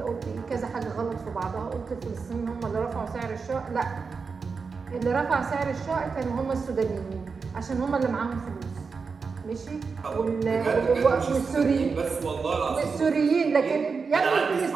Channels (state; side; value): quieter; left; 5.1 dB